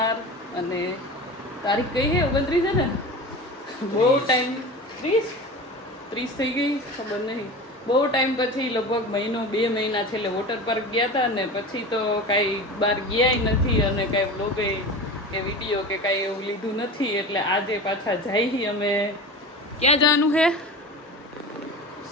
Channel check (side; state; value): both; normal; correlation 0.32